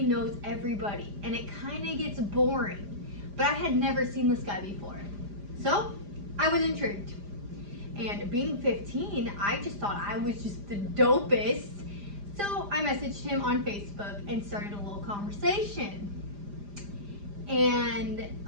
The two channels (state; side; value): late; left; 5.0 ms